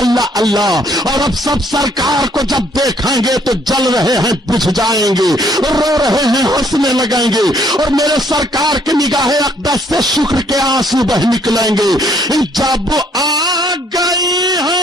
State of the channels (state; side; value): normal; both; correlation 0.65